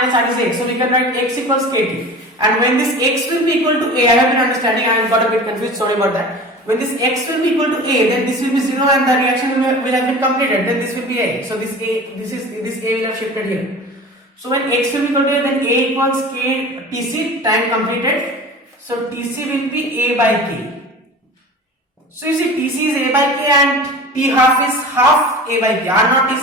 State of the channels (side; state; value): both; normal; correlation 0.37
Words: R is X. So we can write X equals KT. And when this X will be equal to A, I have been understanding, I got a bit confused, sorry about that. When this X will be equal to A, then this will be 0 and the reaction will have been completed. Then this will be A. So this A will have shifted here. So when X will be equal to A, then A equals K Tc, time completed. So Tc will be A by K. So you see Tc is A by K and T half is half A by K. R naught